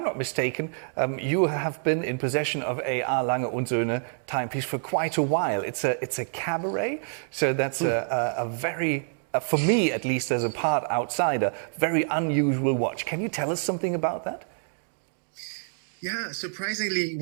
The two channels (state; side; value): silent; left; 60 dB below the other